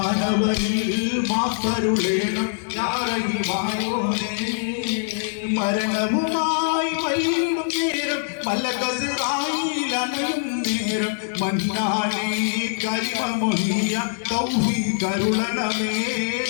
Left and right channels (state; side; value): silent; right; 63 dB below the other